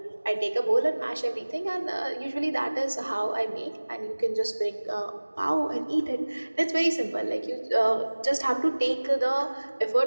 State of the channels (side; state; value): both; inverted; correlation -1.00